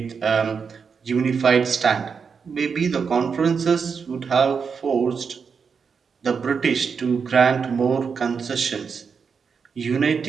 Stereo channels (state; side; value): quieter; left; 5.9 dB